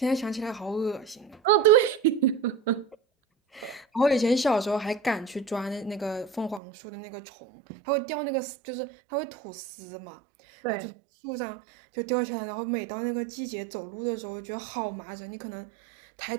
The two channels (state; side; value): drops out; left; at 6.6 s